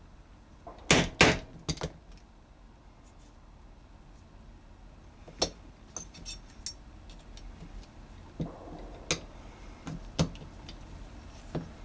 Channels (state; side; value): identical; both; correlation 1.00